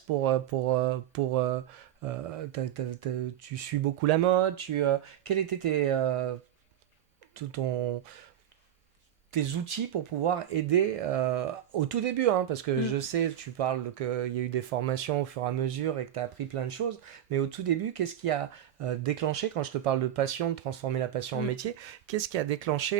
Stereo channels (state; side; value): quieter; left; 10.8 dB